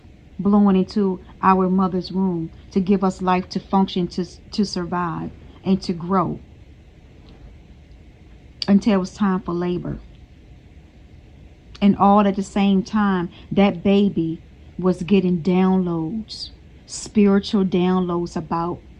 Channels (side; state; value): both; identical; correlation 1.00